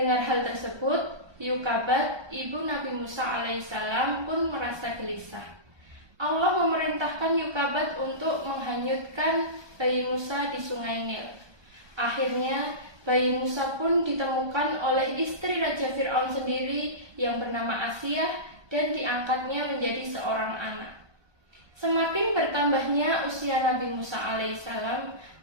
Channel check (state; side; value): late; left; 1.2 ms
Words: hal tersebut, Yukabat, ibu Nabi Musa alaihissalam pun merasa gelisah. Allah memerintahkan Yukabat untuk menghanyutkan bayi Musa di sungai Nil. Akhirnya, bayi Musa pun ditemukan oleh istri Raja Fir'aun sendiri yang bernama Asiyah dan diangkatnya menjadi seorang anak. Semakin bertambahnya usia Nabi Musa alaihissalam,